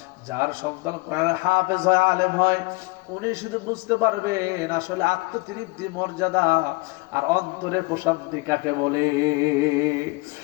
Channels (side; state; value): right; quieter; 25.5 dB